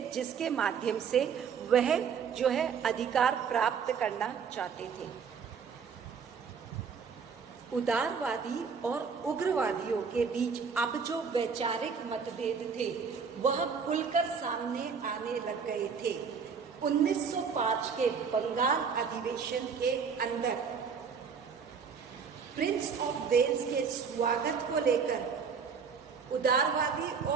जिसके माध्यम से वह जो है अधिकार प्राप्त करना चाहते थे। उदारवादी और उग्रवादियों के बीच अब जो वैचारिक मतभेद थे वह खुलकर सामने आने लग गए थे। 1905 के बंगाल अधिवेशन के अंदर प्रिंस ऑफ वेल्स के स्वागत को लेकर उदारवादी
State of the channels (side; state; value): left; quieter; 6.2 dB